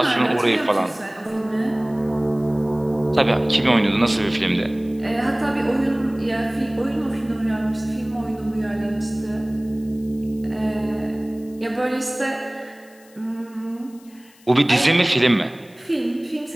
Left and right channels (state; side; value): noise; left; hiss, 28 dB below the sound